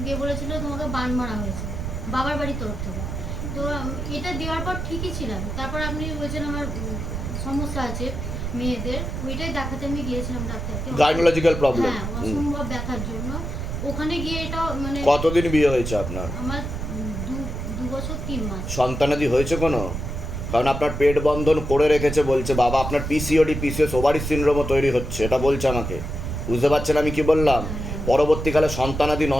দিয়ে বলেছিল তোমাকে বান মারা হয়েছে বাবার বাড়ির তরফ থেকে। তো এটা দেওয়ার পর ঠিকই ছিলাম। তারপর আপনি বলছেন আমার সমস্যা আছে মেয়েদের, ওইটাই দেখাতে আমি গিয়েছিলাম ডাক্তারকে। Gynaecological problem. হ্যাঁ, অসম্ভব ব্যথার জন্য ওখানে গিয়ে এটা মানে। কতদিন বিয়ে হয়েছে আপনার? আমার 2 বছর 3 মাস। সন্তানাদি হয়েছে কোনো? কারণ আপনার পেট বন্ধন করে রেখেছে বলছে বাবা, আপনার পিসিওডি, পিসিএস, ওভারি সিনড্রোমও তৈরি হচ্ছে, এটা বলছে আমাকে। বুঝতে পারছেন আমি কি বললাম? পরবর্তীকালে সন্তানাদি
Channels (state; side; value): noise; right; rumble, 5 dB below the sound